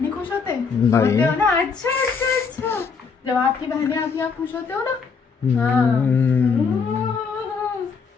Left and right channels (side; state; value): right; quieter; 5.4 dB